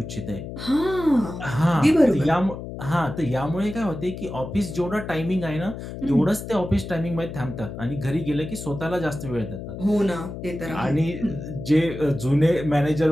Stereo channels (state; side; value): noise; left; hum, 9 dB below the sound